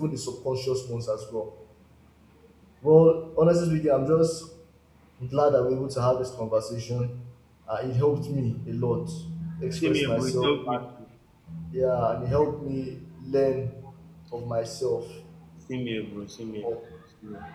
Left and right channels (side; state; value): both; identical; correlation 1.00